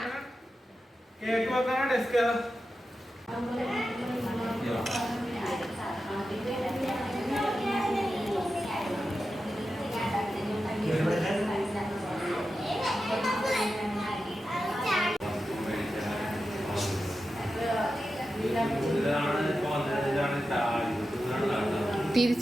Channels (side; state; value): both; normal; correlation 0.91